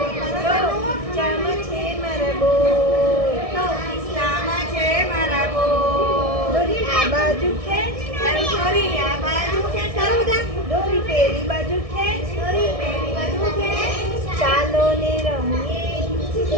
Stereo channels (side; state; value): left; late; 1.6 ms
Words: ખિસ્સામાં છે મારા બોર, ખિસ્સામાં છે મારા બોર. દોરી આ બાજુ ખેંચ, દોરી આ બાજુ ખેંચ, ચાલો બધા. દોરી પેલી બાજુ ખેંચ, દોરી પેલી બાજુ ખેંચ. ચાલો ને રમીએ,